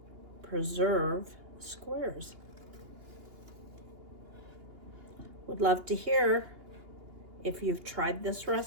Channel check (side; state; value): left; late; 2.8 ms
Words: preserve squares. Would love to hear if you've tried this